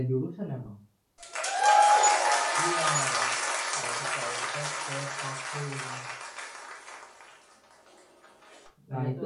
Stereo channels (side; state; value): both; identical; correlation 1.00